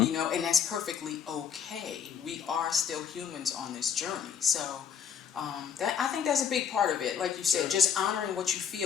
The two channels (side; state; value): right; quieter; 7.8 dB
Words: and that's perfectly okay. We are still humans on this journey, so that I think that's a big part of it. Like you said, just honoring what you